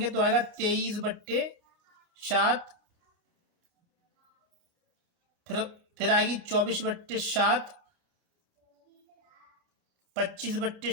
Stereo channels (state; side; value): late; left; 29 ms